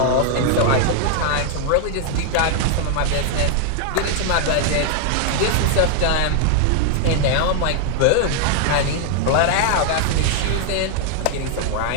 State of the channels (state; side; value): different; both; correlation 0.00